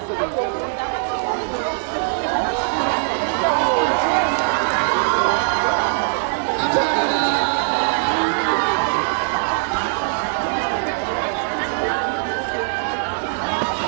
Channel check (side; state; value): left; silent; digital silence